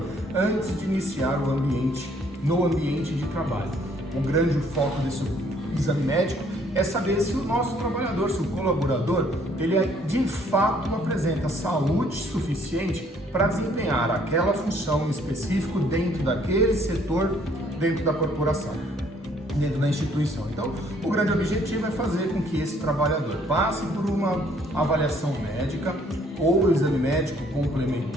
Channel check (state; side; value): normal; both; correlation 0.63